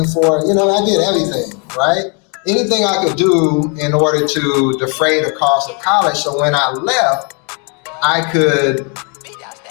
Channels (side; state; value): right; quieter; 35.9 dB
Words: for it. I did everything, right? Anything I could do in order to defray the cost of college. So when I left, I could